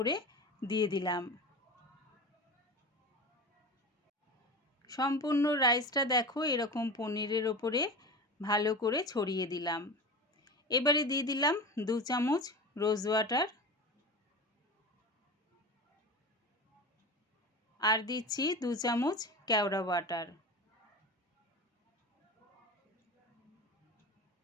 দিয়ে দিলাম। সম্পূর্ণ রাইসটা দেখো এরকম পনিরের ওপরে ভালো করে ছড়িয়ে দিলাম। এবারে দিয়ে দিলাম 2 চামচ রোজ ওয়াটার আর দিচ্ছি 2 চামচ কেওড়া ওয়াটার।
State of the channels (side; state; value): both; normal; correlation 0.29